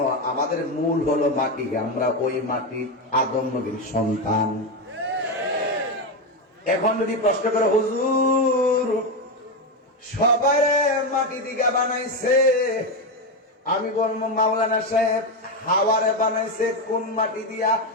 আমাদের মূল হলো মাটি। আমরা ওই মাটি আদম নবীর সন্তান। এখন যদি প্রশ্ন করে, হুজুর সবাই মাটি দিকে বানাইছে, আমি বলবো মাওলানা সাহেব হাওয়ারে বানাইছে কোন মাটি দিয়া?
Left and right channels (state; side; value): normal; both; correlation 0.11